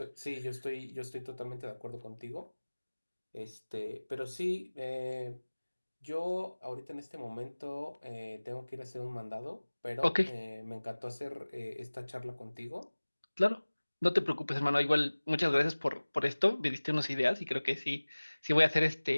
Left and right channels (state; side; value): inverted; both; correlation -1.00